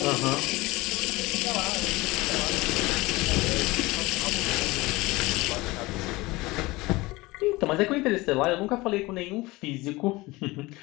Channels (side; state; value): right; quieter; 21.4 dB